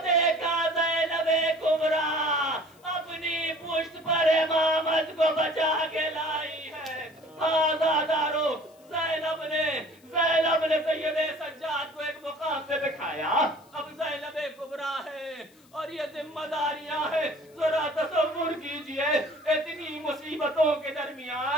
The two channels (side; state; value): left; noise; hiss, 30 dB below the sound